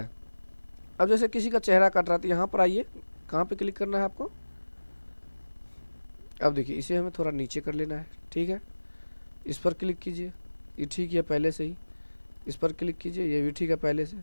अब जैसे किसी का चेहरा कट रहा है, तो यहाँ पर आइए, कहाँ पे क्लिक करना है आपको, अब देखिए इसे हमें थोड़ा नीचे कर लेना है, ठीक है। इस पर क्लिक कीजिए, ये ठीक है पहले से ही। इस पर क्लिक कीजिए, ये भी ठीक है पहले से।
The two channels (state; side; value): inverted; both; correlation -1.00